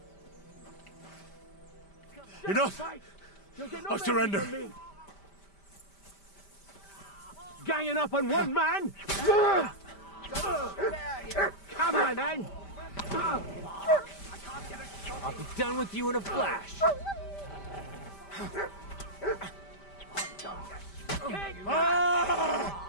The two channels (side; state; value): right; late; 5.1 ms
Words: Enough! I surrender! Ganging up on one man? Come on, then! I'll be done with you in a flash.